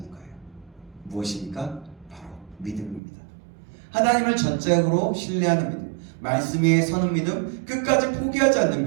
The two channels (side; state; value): left; drops out; at 3.0 s